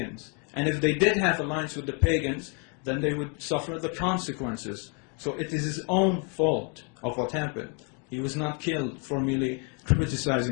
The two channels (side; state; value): right; quieter; 37.2 dB